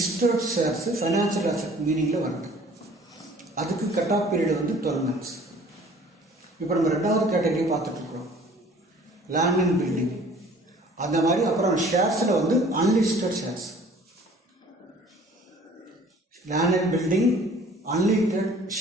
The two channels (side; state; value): both; normal; correlation 0.51